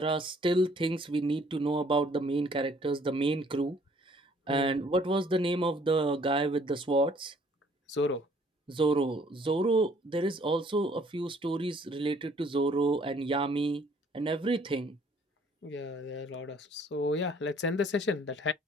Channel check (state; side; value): normal; both; correlation 0.60